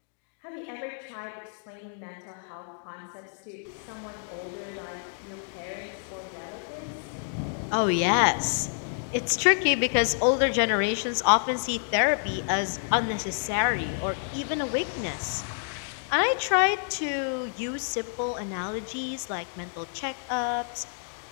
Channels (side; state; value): right; silent; digital silence